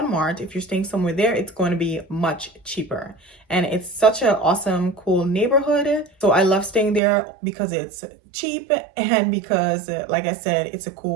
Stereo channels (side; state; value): left; drops out; at 7.0 s